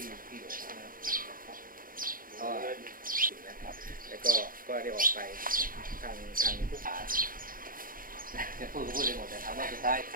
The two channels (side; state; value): left; late; 0.41 ms